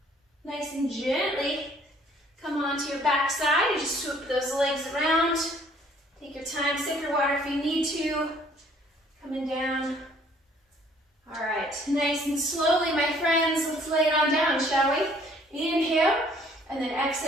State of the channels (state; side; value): normal; both; correlation 0.59